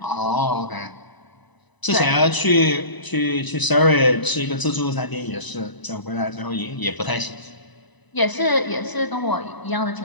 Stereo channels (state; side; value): late; right; 1.0 ms